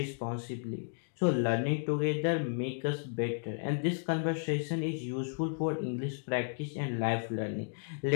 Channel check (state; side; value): silent; right; digital silence